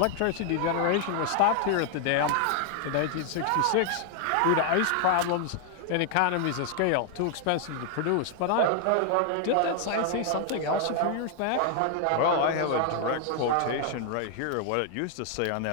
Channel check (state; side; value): different; both; correlation 0.00